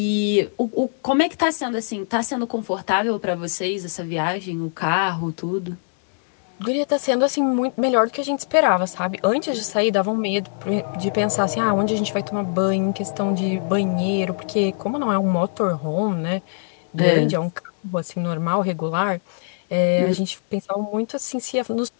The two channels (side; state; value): right; silent; digital silence